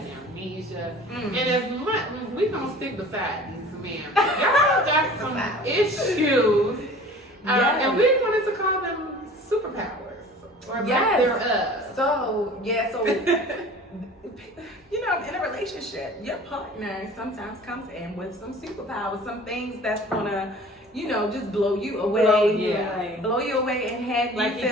amnesia, Mm. and as much we gonna stick beside these men. Y'all got some issues, Yes. and we wanted to call them superpowers or lack Yes. thereof. So you know, in a relationship, your partner sometimes comes in with some superpowers, some things that's gonna, you know, just blow you away. Blow you away and have Like you you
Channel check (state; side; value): normal; both; correlation 0.44